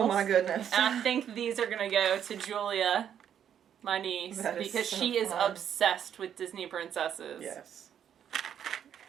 my goodness. And I think these are going to go to Julia, my niece, because she is obsessed with Disney princesses. Yes.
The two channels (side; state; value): left; quieter; 9.2 dB